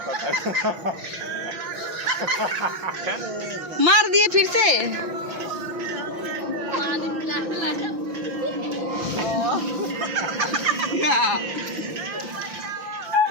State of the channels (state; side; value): late; left; 5.9 ms